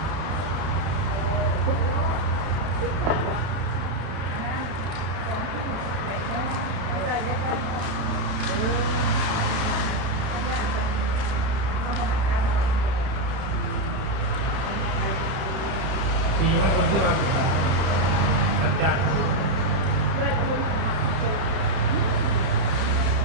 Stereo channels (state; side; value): late; left; 31 ms